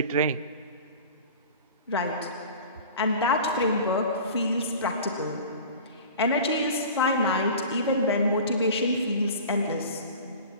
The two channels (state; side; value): inverted; both; correlation -0.39